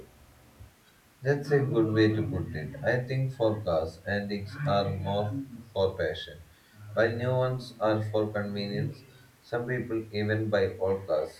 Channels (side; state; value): both; identical; correlation 1.00